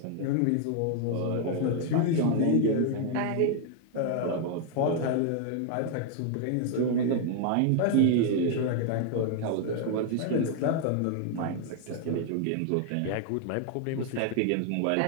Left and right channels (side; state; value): both; different; correlation 0.00